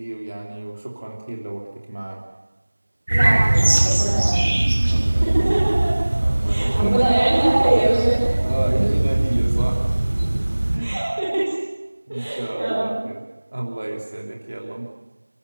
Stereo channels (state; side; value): inverted; both; correlation -1.00